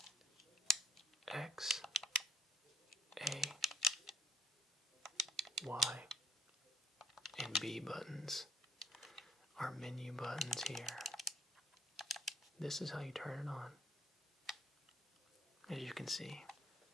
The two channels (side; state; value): both; normal; correlation 0.60